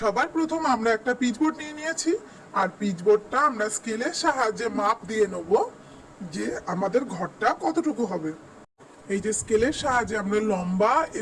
প্রথম আমরা একটা পিচবোর্ড নিয়ে নিয়েছি, আর পিচবোর্ডটা আমরা স্কেলের সাহায্যে মাপ দিয়ে নেব যে আমাদের ঘরটা কতটুকু হবে। এই যে স্কেলের সাহায্যে আমরা লম্বা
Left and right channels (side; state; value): both; identical; correlation 1.00